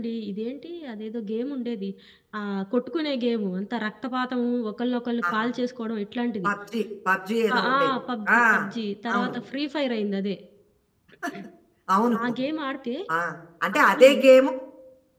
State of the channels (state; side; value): identical; both; correlation 1.00